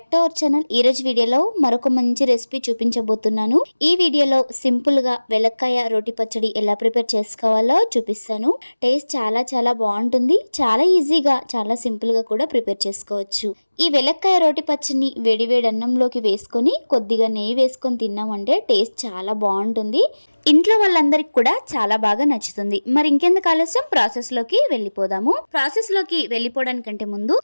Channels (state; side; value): inverted; both; correlation -1.00